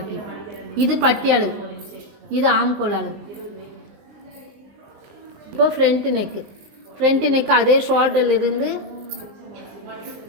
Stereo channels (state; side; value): late; left; 19 ms